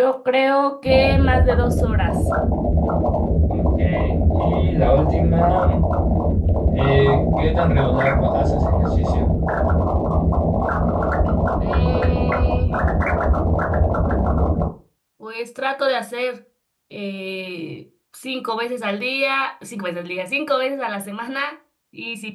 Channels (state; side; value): identical; both; correlation 1.00